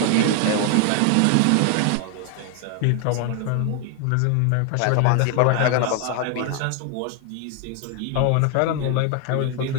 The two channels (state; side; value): different; both; correlation 0.01